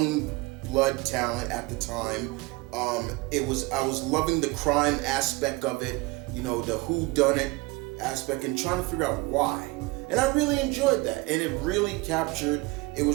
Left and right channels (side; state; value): left; quieter; 23.4 dB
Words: blood talent at the time. I was loving the crime aspect of it, the whodunit aspect, and trying to figure out why. And I really enjoyed that, and it really captured. It